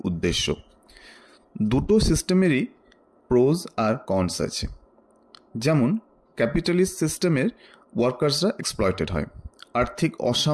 উদ্দেশ্য। দুটো সিস্টেমেরই প্রোজ আর কনস আছে। যেমন ক্যাপিটালিস্ট সিস্টেমের ওয়ার্কার্সরা এক্সপ্লয়েটেড হয়, আর্থিক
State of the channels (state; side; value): identical; both; correlation 1.00